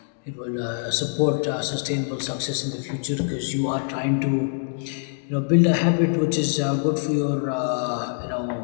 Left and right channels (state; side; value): silent; right; digital silence